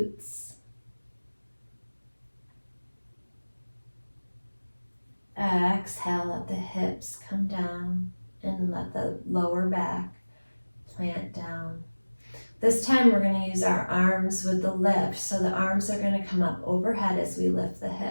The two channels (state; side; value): inverted; both; correlation -1.00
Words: Exhale, let the hips come down and let the lower back plant down. This time we're going to use our arms with the lift. So the arms are going to come up overhead as we lift the